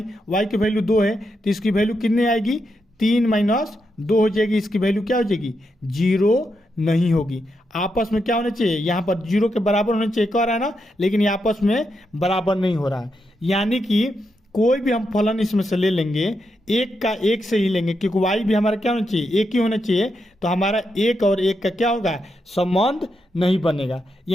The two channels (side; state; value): both; normal; correlation 0.84